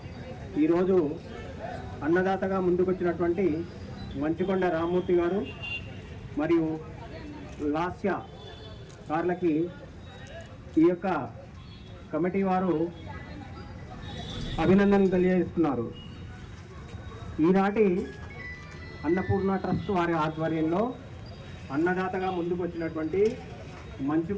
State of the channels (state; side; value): identical; both; correlation 1.00